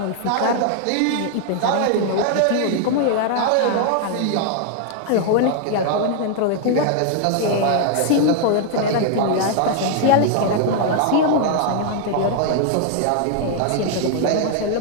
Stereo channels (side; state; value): both; different; correlation 0.00